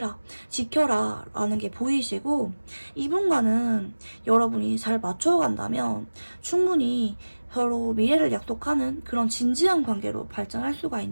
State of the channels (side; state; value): both; inverted; correlation -1.00